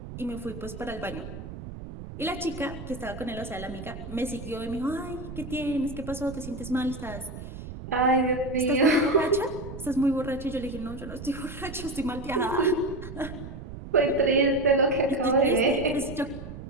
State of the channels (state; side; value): noise; right; rumble, 11 dB below the sound